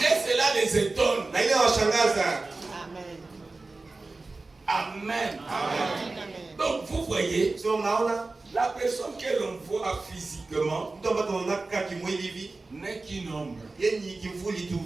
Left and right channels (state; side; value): quieter; left; 3.5 dB